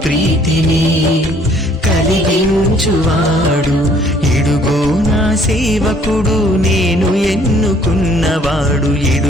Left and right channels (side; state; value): both; normal; correlation 0.60